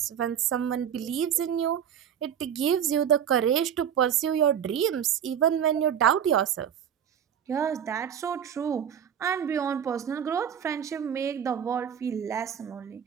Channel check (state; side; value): quieter; left; 8.8 dB